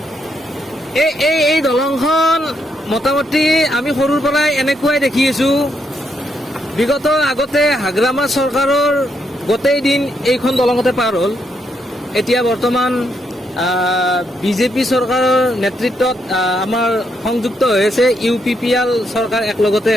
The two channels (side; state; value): both; normal; correlation 0.78